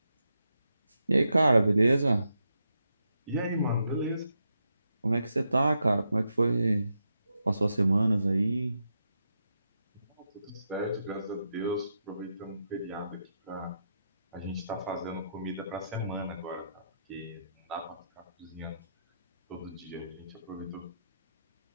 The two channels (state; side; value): inverted; both; correlation -0.84